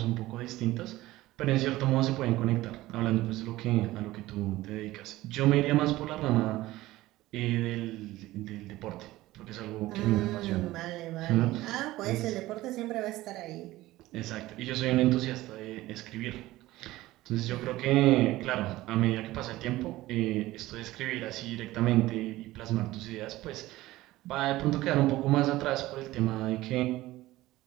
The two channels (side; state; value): left; quieter; 17.2 dB